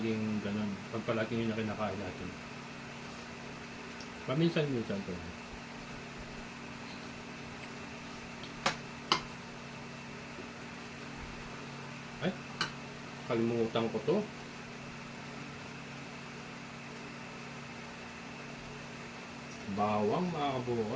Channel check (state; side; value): identical; both; correlation 1.00